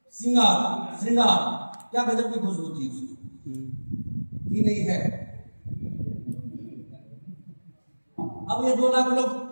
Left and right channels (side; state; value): both; inverted; correlation -1.00